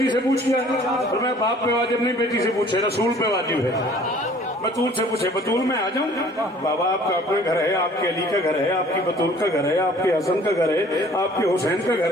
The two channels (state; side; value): normal; both; correlation 0.53